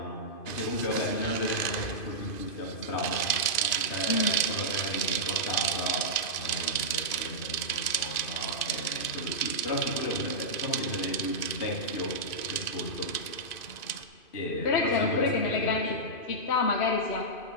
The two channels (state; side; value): late; right; 2.5 ms